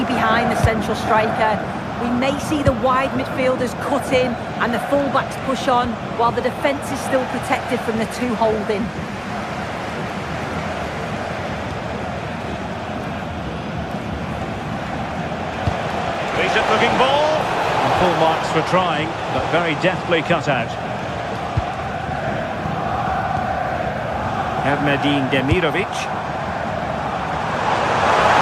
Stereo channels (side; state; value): both; identical; correlation 1.00